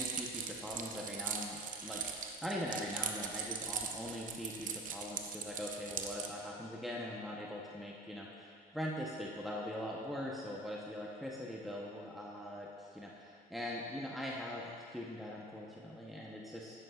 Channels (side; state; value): both; normal; correlation 0.42